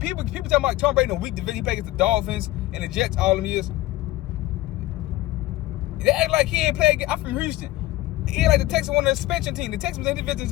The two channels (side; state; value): right; quieter; 17.1 dB